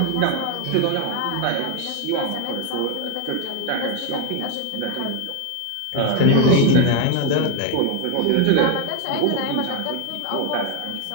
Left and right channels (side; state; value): both; different; correlation 0.01